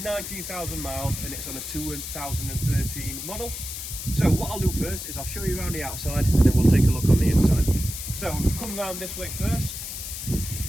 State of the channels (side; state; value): left; noise; hiss, 7 dB below the sound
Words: miles and it's on a 2013 model. So what I'll do first is I'll show you around the outside and then we'll take a look on the inside. So come round this way first.